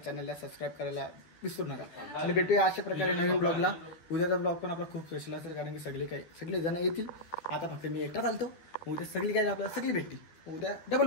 चॅनलला सबस्क्राईब करायला विसरू नका. आणि भेटूया अशा प्रकारे नवीन ब्लॉगला. उद्याचा ब्लॉग पण आपला खूप स्पेशल असेल कारण की सगळे जण येतील. आता फक्त मी एकटा चालतो. उद्या सगळी काय आपल्याला सगळी भेटतील. उद्या डबल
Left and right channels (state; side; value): late; right; 12 ms